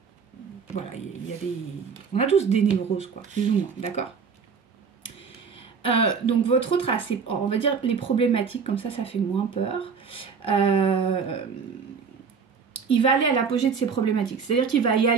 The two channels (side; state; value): left; quieter; 5.8 dB